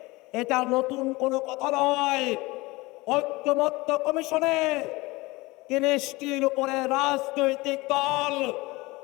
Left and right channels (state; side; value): quieter; right; 22.4 dB